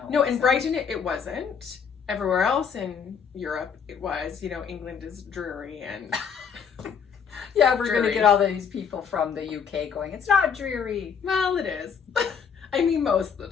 No, in Brighton it wasn't. Everywhere else in Europe it was. You know, England is dreary and... Yeah, we're going to dreary. get all these people from the UK going, it's not dreary. Well, it is. I mean, most of the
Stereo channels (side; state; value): right; quieter; 6.8 dB